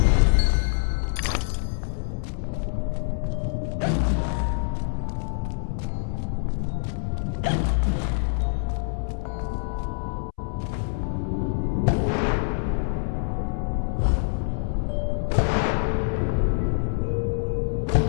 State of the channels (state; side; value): silent; right; 61 dB below the other